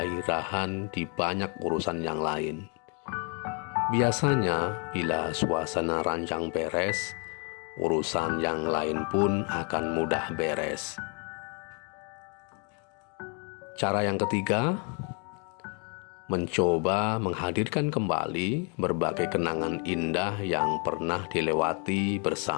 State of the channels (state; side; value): quieter; right; 37.0 dB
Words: di banyak urusan yang lain. Biasanya, bila suasana ranjang beres, urusan yang lain pun akan mudah beres. Cara yang ketiga, mencoba menghadirkan kembali berbagai kenangan indah yang pernah dilewati